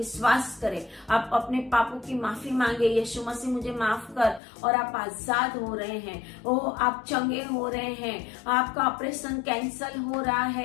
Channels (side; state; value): right; drops out; at 4.4 s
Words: करें, आप अपने पापों की माफी मांगे, यीशु मसीह मुझे माफ कर, और आप आजाद हो रहे हैं। ओ आप चंगे हो रहे हैं, आपका ऑपरेशन कैंसल हो रहा